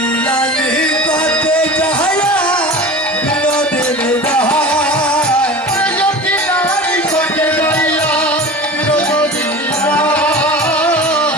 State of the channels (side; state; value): both; normal; correlation 0.34